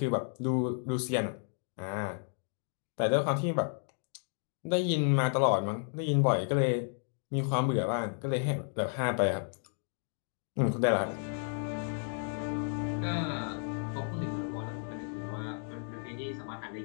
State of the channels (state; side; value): silent; right; 56 dB below the other